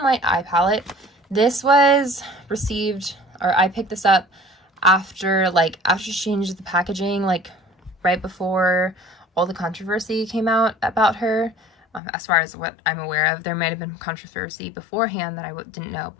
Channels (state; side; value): drops out; right; at 12.0 s